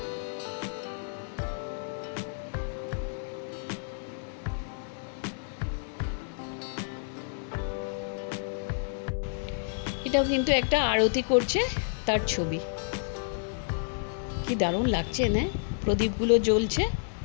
এটাও কিন্তু একটা আরতি করছে তার ছবি, কি দারুণ লাগছে না, প্রদীপগুলো জ্বলছে,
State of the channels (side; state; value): right; silent; 58 dB below the other